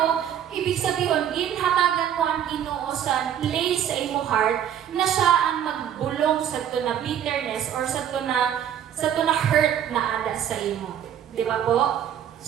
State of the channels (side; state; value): left; quieter; 9.8 dB